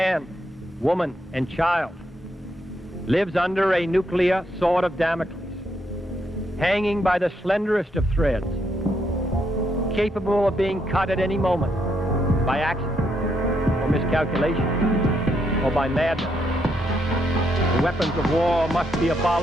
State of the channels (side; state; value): both; normal; correlation 0.77